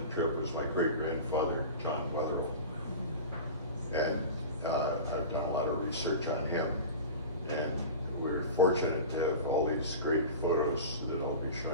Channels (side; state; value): both; inverted; correlation -0.31